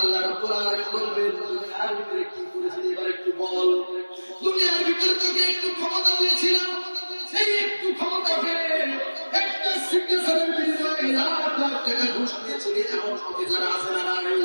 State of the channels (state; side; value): inverted; both; correlation -1.00